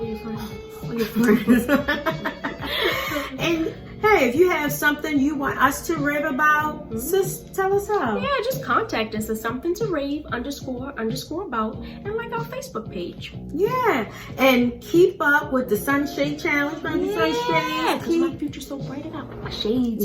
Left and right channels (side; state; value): both; identical; correlation 1.00